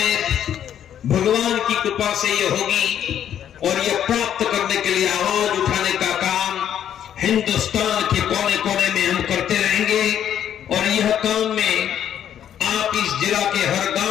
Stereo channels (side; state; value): right; quieter; 9.9 dB